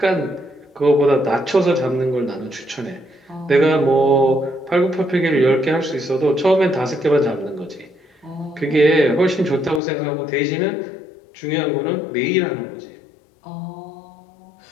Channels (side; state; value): right; drops out; at 9.8 s